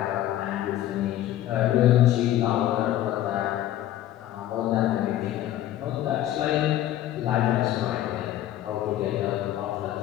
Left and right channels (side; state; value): right; quieter; 13.0 dB